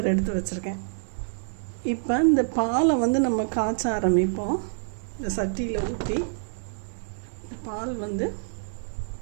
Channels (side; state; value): left; silent; digital silence